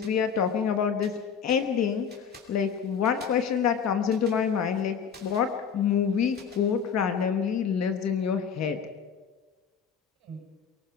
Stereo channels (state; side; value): quieter; right; 7.0 dB